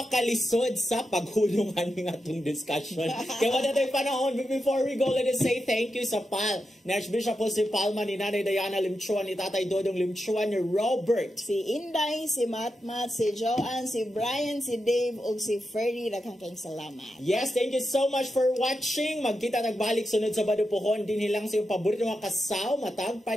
sa paghulungan ng atong discussion. Kaya wala tayo panahon, but before we go, let us say thank you sa PAL. Ni Archbishop po si Palma, ni Nanay Diana Limchuan, ni Tatay Dodong Limchuan, ni Robert, si Inday, si Matmat, si Joanne, si Brian, si Dave, ug si Ferdy. Daghang kayong salamat. Yes, thank you so much for watching. Magkita nagbalik sunod sa Badupuhon. Din hilang sa iyong paborito mga kasaw, matag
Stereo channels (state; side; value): normal; both; correlation 0.88